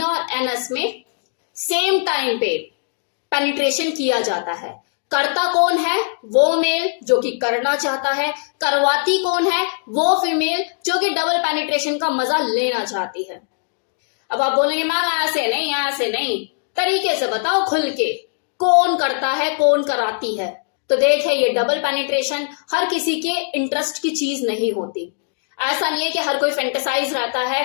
और एनस में सेम टाइम पे पेनिट्रेशन किया जाता है। करता कौन है? वो मेल जो कि करना चाहता है। करवाती कौन है? वो फीमेल जो कि डबल पेनिट्रेशन का मजा लेना चाहती है। अब आप बोलेंगे मैम ऐसे नहीं, ऐसे नहीं, तरीके से बताओ खुल के, कौन करता है, कौन कराती है। तो देखे, ये डबल पेनिट्रेशन हर किसी के इंटरेस्ट की चीज नहीं होती। ऐसा नहीं है कि हर कोई फैंटेसाइज रहता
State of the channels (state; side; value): silent; right; digital silence